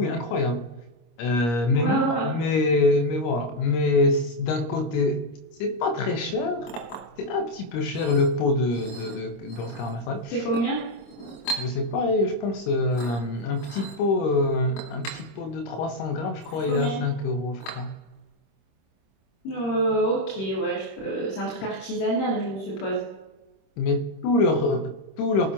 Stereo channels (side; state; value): right; late; 25 ms